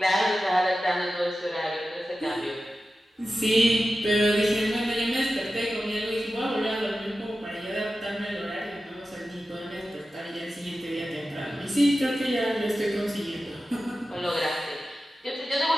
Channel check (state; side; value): normal; both; correlation 0.93